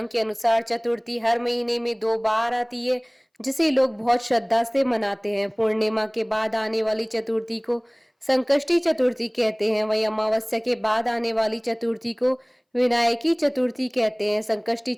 के अनुसार चतुर्थी हर महीने में 2 बार आती है, जिसे लोग बहुत श्रद्धा से मनाते हैं। पूर्णिमा के बाद आने वाली चतुर्थी को संकष्टी चतुर्थी कहते हैं। वही अमावस्या के बाद आने वाली चतुर्थी को विनायकी चतुर्थी कहते हैं। संकष्टी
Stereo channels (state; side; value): identical; both; correlation 1.00